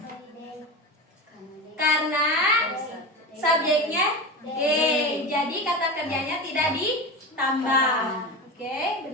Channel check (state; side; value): normal; both; correlation 0.25